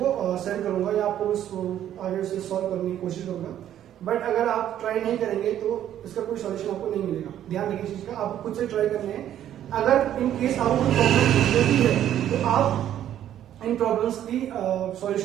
सेंड करूंगा या आपको उसको आगे से सॉल्व करने की कोशिश करूंगा। बट अगर आप ट्राई नहीं करेंगे तो इसका कोई सॉल्यूशन आपको नहीं मिलेगा। ध्यान रखिए चीज का, आपको खुद से ट्राई करने हैं। अगर इन केस आपको कोई प्रॉब्लम होती है तो आप इन प्रॉब्लम्स की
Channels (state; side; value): quieter; left; 11.2 dB